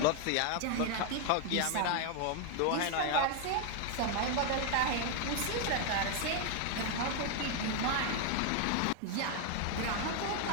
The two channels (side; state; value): both; different; correlation 0.01